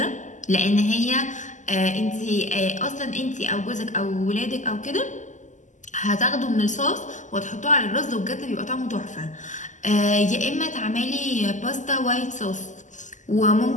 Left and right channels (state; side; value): late; right; 0.36 ms